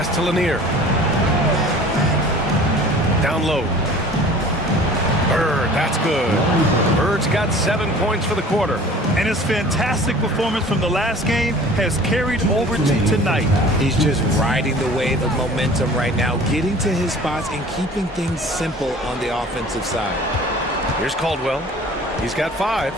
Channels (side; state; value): both; normal; correlation 0.45